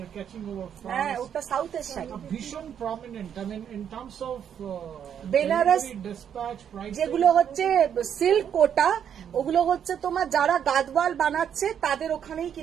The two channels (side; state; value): left; quieter; 8.7 dB